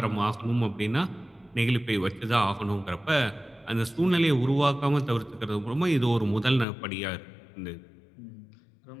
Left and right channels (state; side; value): drops out; right; at 6.7 s